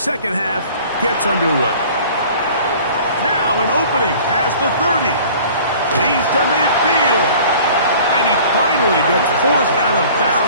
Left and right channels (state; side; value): inverted; both; correlation -0.47